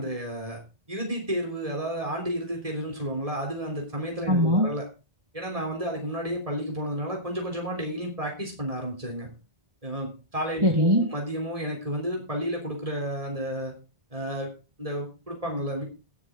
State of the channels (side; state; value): left; late; 1.7 ms